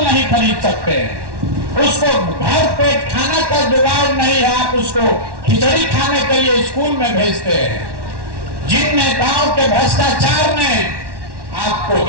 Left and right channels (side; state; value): left; late; 1.1 ms